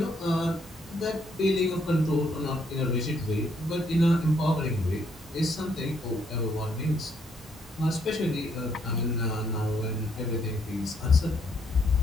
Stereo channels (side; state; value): both; normal; correlation 0.72